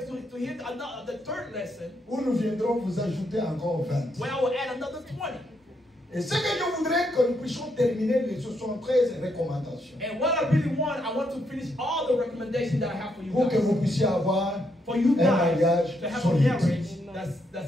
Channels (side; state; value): both; normal; correlation 0.77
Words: to hear the third lesson, Où nous viendrons vous ajouter encore 20. where I will add another 20. Et ce que je voudrais que nous puissions terminer les 73 recommandations. And what I really want to finish all the recommendations that I have for you Pour que guys. vous puissiez avoir For you un guys mariage to have a solide. marriage